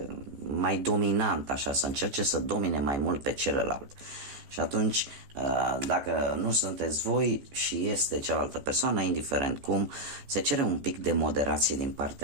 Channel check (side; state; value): left; late; 14 ms